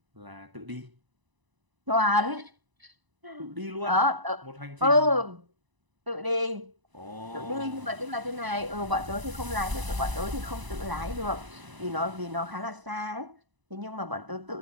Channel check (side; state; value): left; late; 1.0 ms